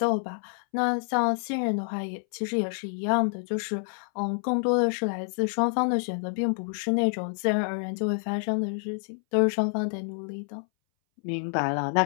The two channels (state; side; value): silent; right; 59 dB below the other